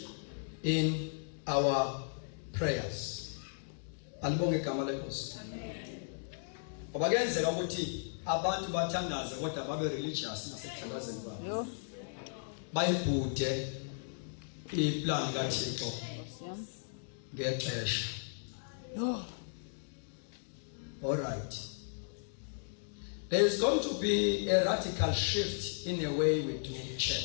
in our prayers. Alibonge igama lenkosi. Obagenzeka ukuthi abantu bathandaze kodwa babe religious nasekuthandazeni kwabo. Bayibhude iplan kaThixo ngexesha. All right. There is going to be a radical shift in the way we do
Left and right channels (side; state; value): right; silent; digital silence